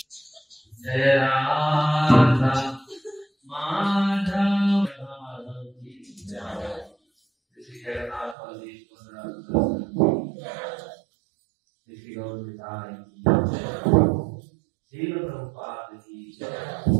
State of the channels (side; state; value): left; drops out; at 8.3 s